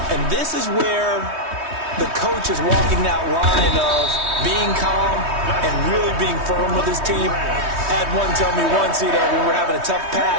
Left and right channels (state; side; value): late; left; 3.2 ms